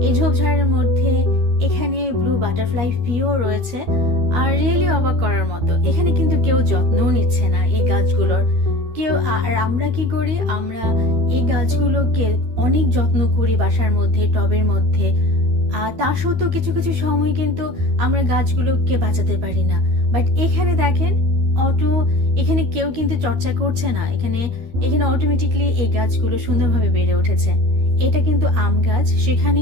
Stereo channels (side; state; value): left; late; 12 ms